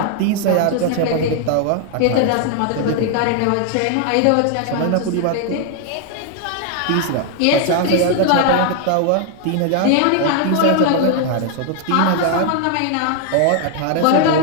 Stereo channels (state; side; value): different; both; correlation 0.00